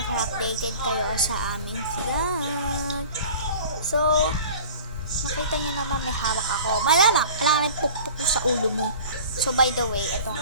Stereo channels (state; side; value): inverted; both; correlation -0.42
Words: para updated kayo sa aming vlog. So, makita nyo naman may hawak ako. Malala, kailangan pukpuk ko sa ulo mo. So, by the way, ito